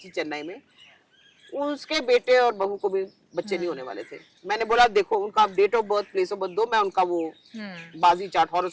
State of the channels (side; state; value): both; identical; correlation 1.00